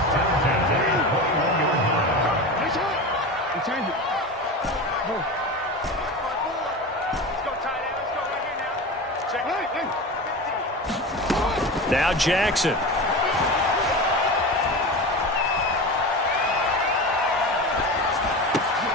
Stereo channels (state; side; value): normal; both; correlation 0.27